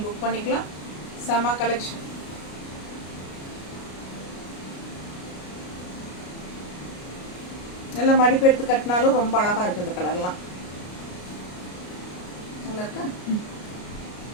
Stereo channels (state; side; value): late; right; 33 ms